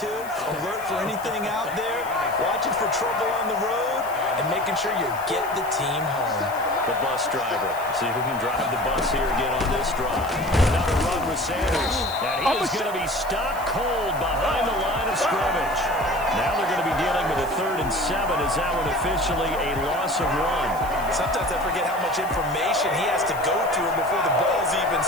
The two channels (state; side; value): noise; left; hiss, 18 dB below the sound